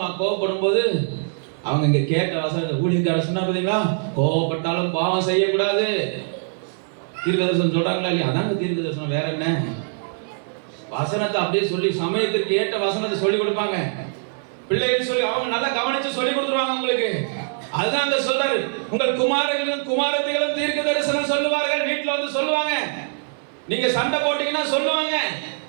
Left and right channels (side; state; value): left; silent; 64 dB below the other